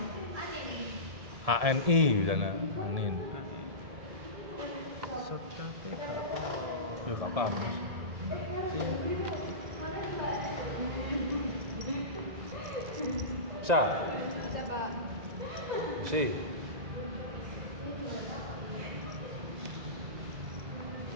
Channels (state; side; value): late; left; 1.7 ms